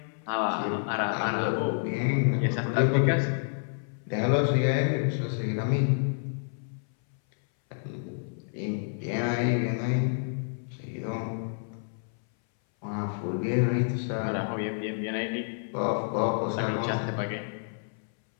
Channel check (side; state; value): right; silent; 59 dB below the other